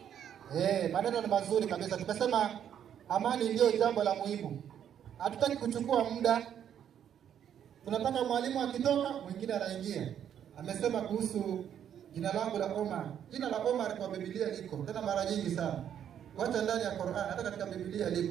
Maneno ni mazuri kabisa. Tumesema amani ndio jambo la muhimu. Hatutaki kuchukua muda. Tunataka mwalimu akitoka mwingine anaingia. Amesema kuhusu jina langu la Omar. Jina la Omar kwa Biblia liko tena mara nyingi sana. Wacha ndani ya Qur'an, hata katika Biblia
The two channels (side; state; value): left; quieter; 9.4 dB